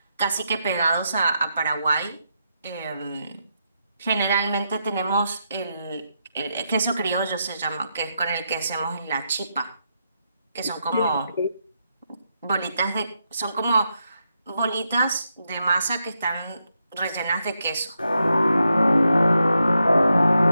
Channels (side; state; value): both; inverted; correlation -0.83